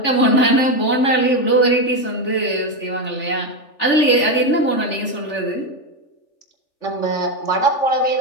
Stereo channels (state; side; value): late; right; 3.4 ms